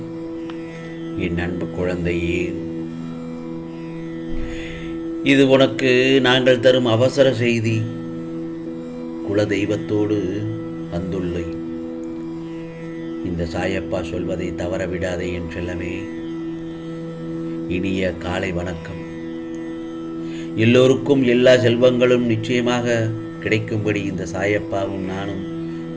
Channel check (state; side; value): identical; both; correlation 1.00